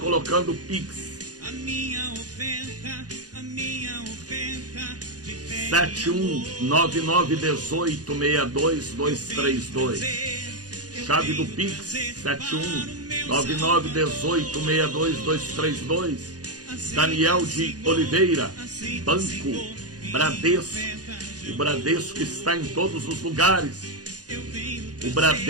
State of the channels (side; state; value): left; late; 0.68 ms